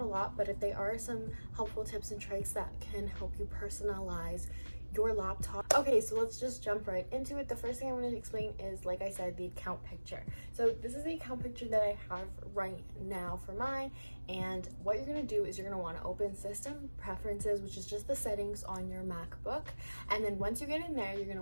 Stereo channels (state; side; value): inverted; both; correlation -1.00